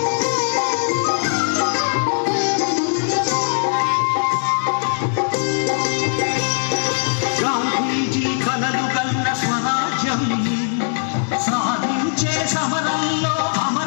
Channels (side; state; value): right; silent; digital silence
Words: గాంధీజీ కలలు కన్న స్వరాజ్యం సాధించే సమరంలో